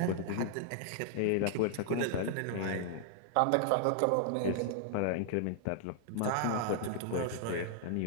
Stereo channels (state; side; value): different; both; correlation -0.01